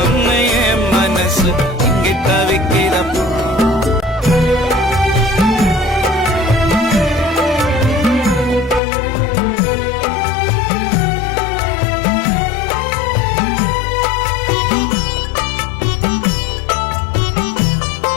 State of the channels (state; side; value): drops out; right; at 8.8 s